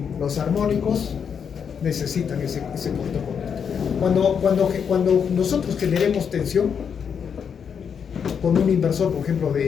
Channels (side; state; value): right; quieter; 7.1 dB